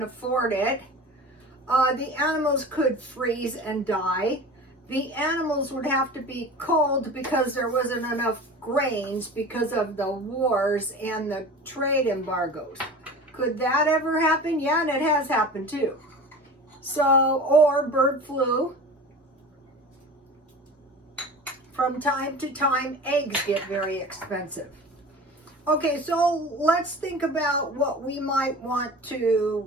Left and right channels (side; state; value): both; normal; correlation 0.36